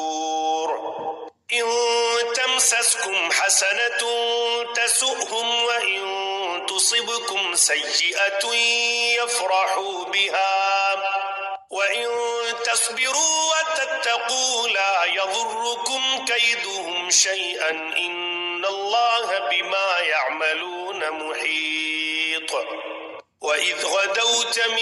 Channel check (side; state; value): both; identical; correlation 1.00